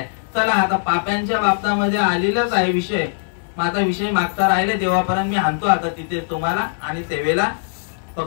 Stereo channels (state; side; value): silent; right; digital silence